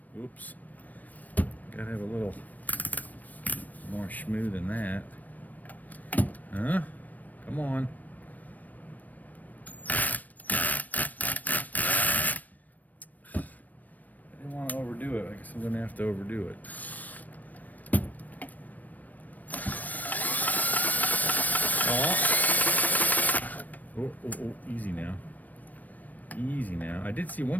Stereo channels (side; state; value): right; late; 0.081 ms